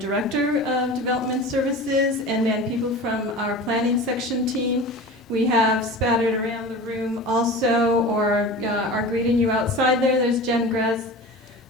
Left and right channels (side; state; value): both; normal; correlation 0.34